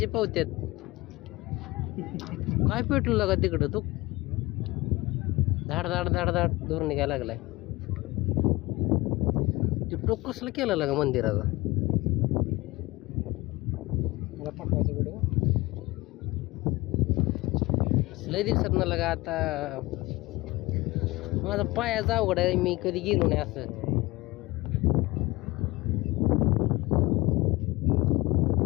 पावत्यात काय पेटलं लागा तिकडं तू धाड धाड धाड धाड दूर निघायला लागलाय ते टोक कसलं केलं लागा मंदिराचा लय दिवसात ना लागा आता माझा पायाचा अवघड आहे मी कधी गेलो नाही असं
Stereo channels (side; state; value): right; quieter; 21.0 dB